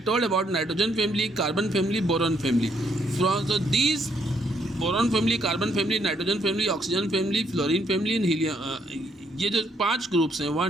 told about nitrogen family, carbon family, boron family. So these boron family, carbon family, nitrogen family, oxygen family, fluorine family and helium. ये जो 5 groups हैं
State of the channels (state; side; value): normal; both; correlation 0.72